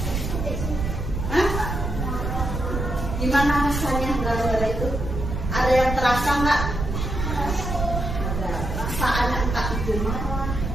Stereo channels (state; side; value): noise; right; rumble, 3 dB below the sound